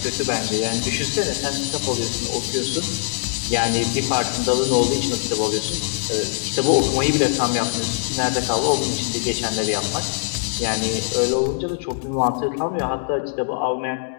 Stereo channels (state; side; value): silent; right; digital silence